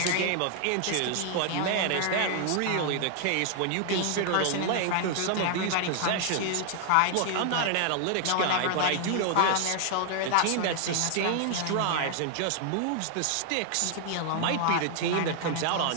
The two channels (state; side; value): different; both; correlation 0.00